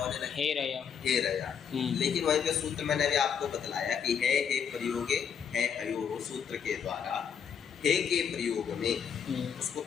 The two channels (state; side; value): quieter; right; 7.4 dB